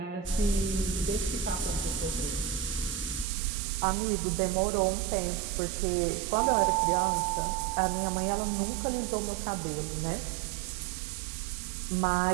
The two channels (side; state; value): left; drops out; at 3.2 s